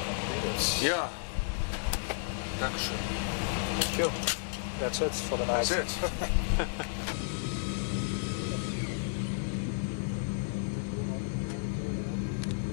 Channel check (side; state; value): right; silent; 56 dB below the other